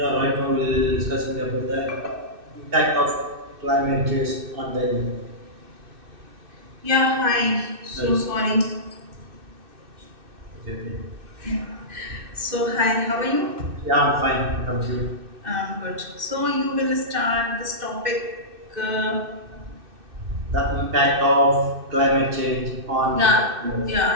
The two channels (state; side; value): late; left; 2.6 ms